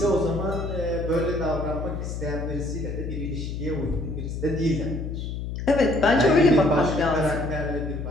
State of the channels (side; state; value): left; noise; hum, 5 dB below the sound